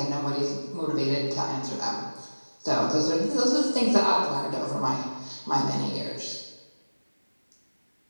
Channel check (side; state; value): both; inverted; correlation -1.00